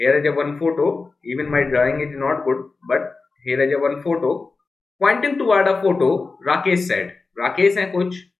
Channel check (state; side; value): quieter; right; 4.0 dB